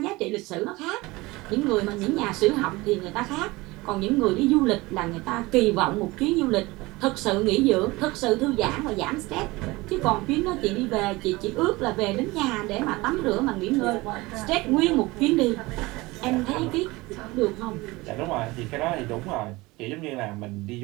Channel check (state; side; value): quieter; left; 21.7 dB